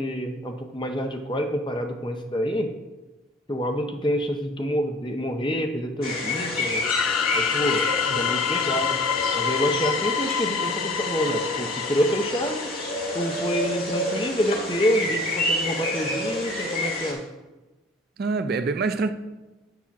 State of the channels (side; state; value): both; normal; correlation 0.48